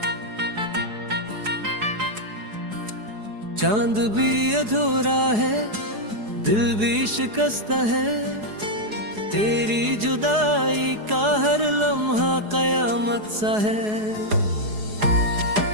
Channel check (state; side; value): late; left; 4.8 ms